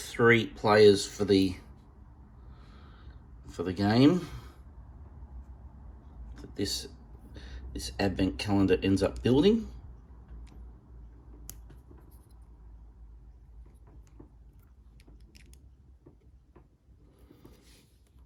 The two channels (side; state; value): both; identical; correlation 1.00